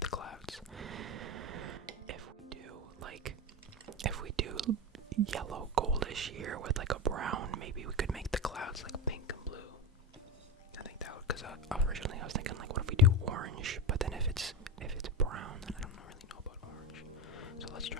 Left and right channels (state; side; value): normal; both; correlation 0.19